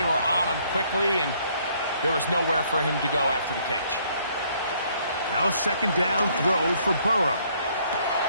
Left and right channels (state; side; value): inverted; both; correlation -0.65